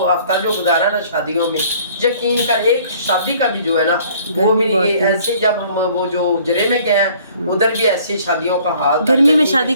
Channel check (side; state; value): both; inverted; correlation -0.56